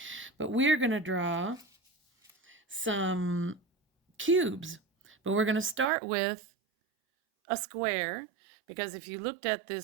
But we're going to draw some cubes, but we're going to start with a square, because if you looked at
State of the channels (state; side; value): drops out; left; at 5.9 s